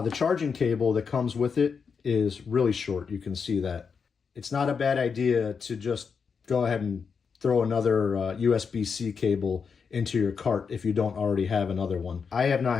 charging cable that comes with it is really short. You can see that. It's not a bad idea to just go ahead and throw another USB-C cable into your cart if you don't already have another one. I have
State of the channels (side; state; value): right; quieter; 5.9 dB